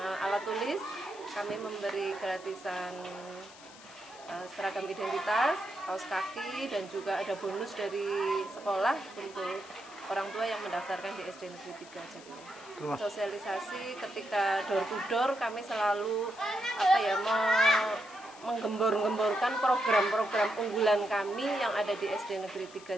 alat tulis. Kami memberi gratisan seragam identitas, kaos kaki, dan juga ada bonus dari sekolah untuk orang tua yang mendaftarkan di SD Negeri 3 Jatiluhur. Sosialisasi ketika door to door kami selalu menggembor-gemborkan program-program unggulan kami yang ada di SD Negeri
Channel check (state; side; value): noise; left; hiss, 20 dB below the sound